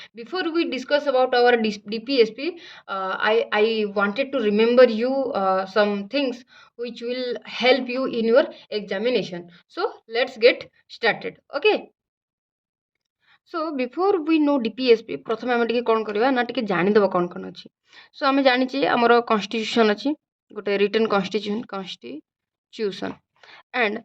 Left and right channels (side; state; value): both; identical; correlation 1.00